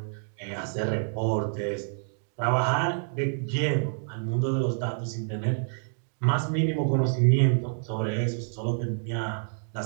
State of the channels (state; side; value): silent; left; digital silence